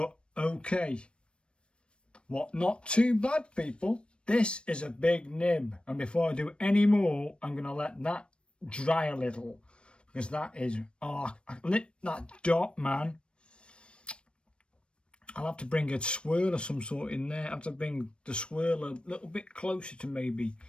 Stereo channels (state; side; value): late; right; 0.057 ms